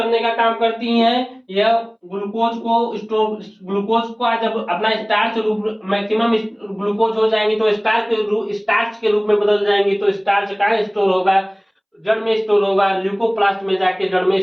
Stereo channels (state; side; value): identical; both; correlation 1.00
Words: का काम करती हैं? यह ग्लूकोज को जब अपना स्टार्च रूप मैक्सिमम ग्लूकोज हो जाएंगी, तो स्टार्च के रूप में बदल जाएंगी। तो स्टार्च कहाँ स्टोर होगा? जड़ में स्टोर होगा। ल्यूकोप्लास्ट में जाके जड़ में